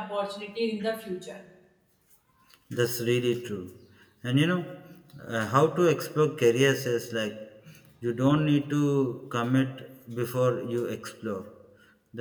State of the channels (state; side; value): identical; both; correlation 1.00